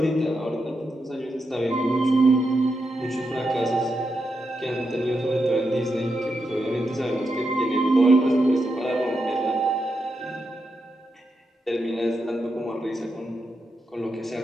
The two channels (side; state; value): both; normal; correlation 0.85